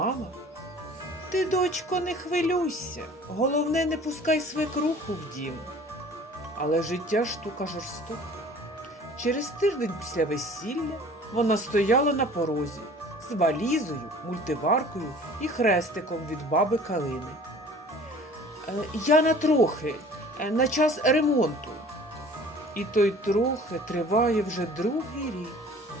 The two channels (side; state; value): both; normal; correlation 0.48